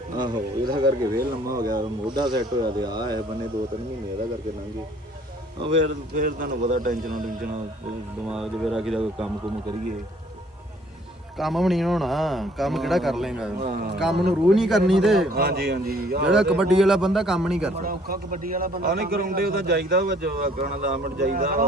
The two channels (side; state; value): both; normal; correlation 0.59